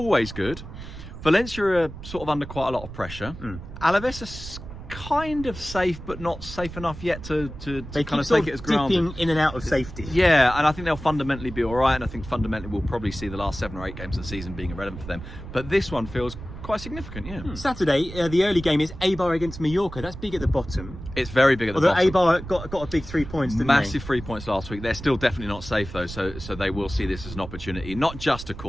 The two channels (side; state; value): right; noise; rumble, 12 dB below the sound